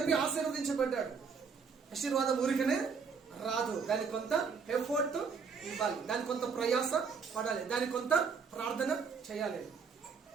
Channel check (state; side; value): quieter; left; 5.6 dB